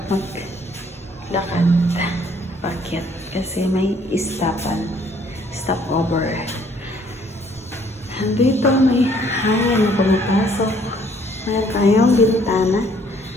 maglakad. Bakit? Kasi may stopover. Dito may hangin na pumapasok. Mayroon tayong bintana.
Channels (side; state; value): both; normal; correlation 0.62